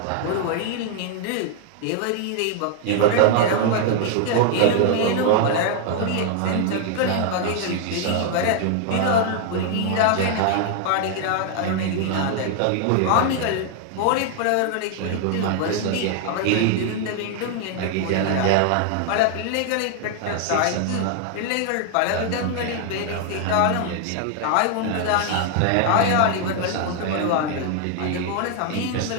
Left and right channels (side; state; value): both; different; correlation 0.00